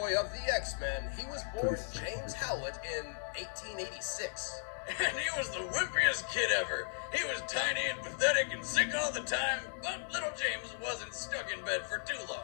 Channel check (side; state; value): right; silent; digital silence